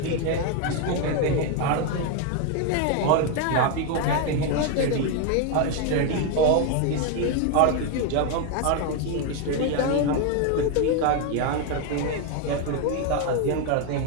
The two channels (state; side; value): different; both; correlation 0.01